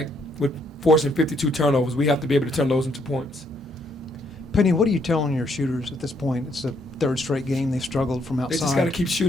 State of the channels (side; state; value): both; normal; correlation 0.71